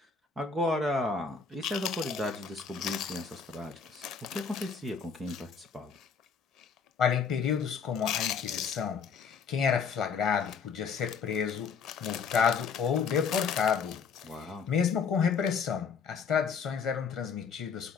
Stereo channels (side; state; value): right; quieter; 5.9 dB